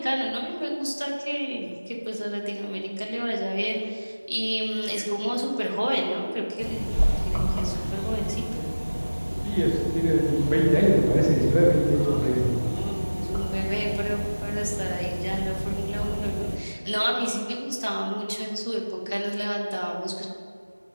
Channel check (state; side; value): inverted; both; correlation -1.00